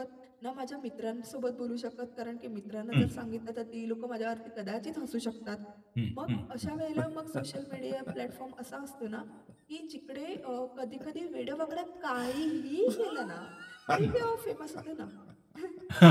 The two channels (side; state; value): both; identical; correlation 1.00